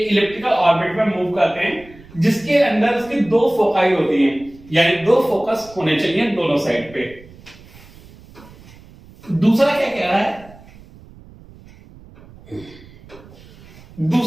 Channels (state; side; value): noise; right; rumble, 22 dB below the sound